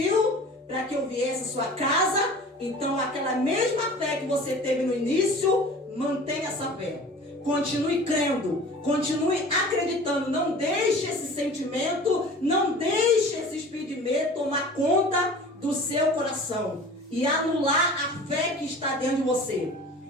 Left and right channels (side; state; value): both; normal; correlation 0.42